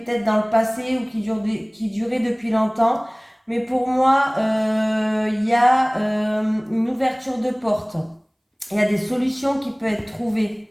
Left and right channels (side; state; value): both; identical; correlation 1.00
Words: dans le passé ou qui durait depuis longtemps. Mais pour moi, il y a une ouverture de porte. Il y a des solutions qui peuvent être